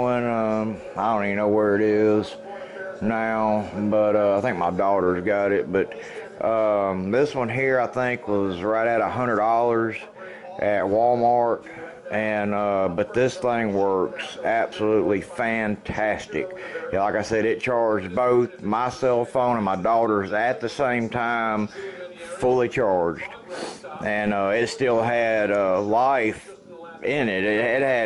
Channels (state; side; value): identical; both; correlation 1.00